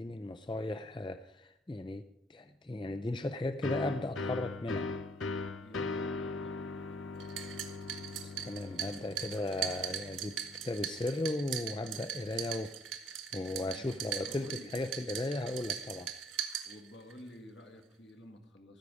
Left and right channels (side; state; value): both; normal; correlation 0.61